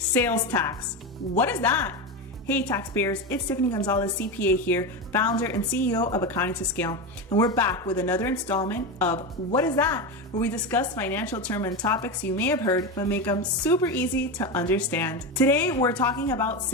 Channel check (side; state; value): both; normal; correlation 0.17